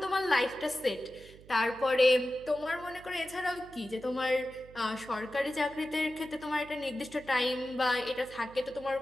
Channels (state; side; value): noise; right; hum, 21 dB below the sound